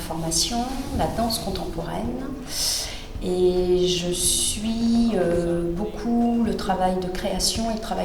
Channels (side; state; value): both; identical; correlation 1.00